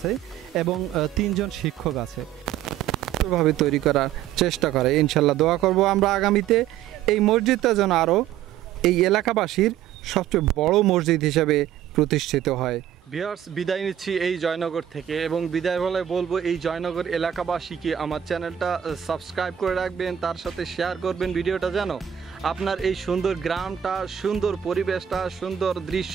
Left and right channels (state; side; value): quieter; left; 10.5 dB